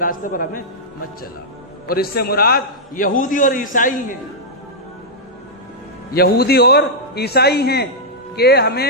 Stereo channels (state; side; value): normal; both; correlation -0.08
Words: پر ہمیں مت چلا۔ اور اس سے مراد یہودی اور عیسائی ہیں، یہودی اور عیسائی ہیں کہ